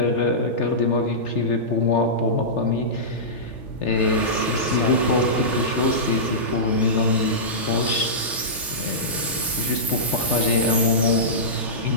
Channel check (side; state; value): both; normal; correlation -0.16